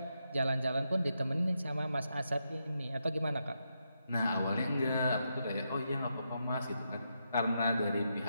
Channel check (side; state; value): both; inverted; correlation -0.83